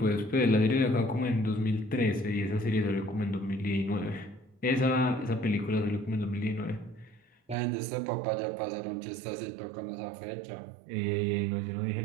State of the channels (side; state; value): left; drops out; at 7.6 s